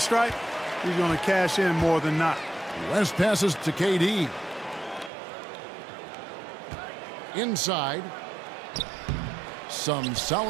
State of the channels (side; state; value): left; drops out; at 5.1 s